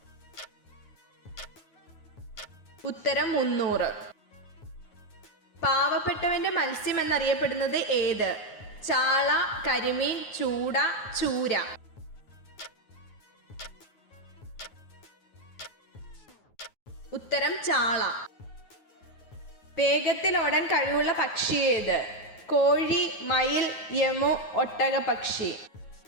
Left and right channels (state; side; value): late; right; 9.4 ms